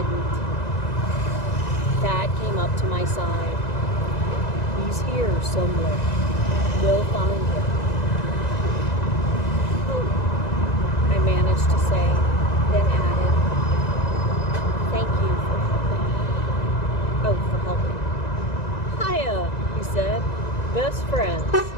Thad came up to my side. "He's here somewhere. We'll find him." "Oh," I managed to say, then added, "Thank you for helping." "Oh, for helping." "Hiya," he said. "Best friends."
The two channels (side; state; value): right; late; 2.0 ms